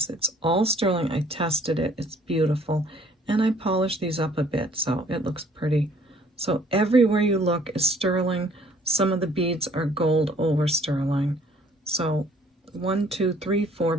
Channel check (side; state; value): both; normal; correlation 0.58